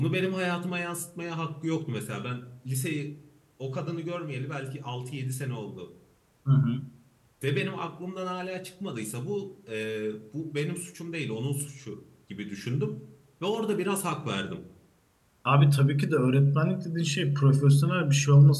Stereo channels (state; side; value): identical; both; correlation 1.00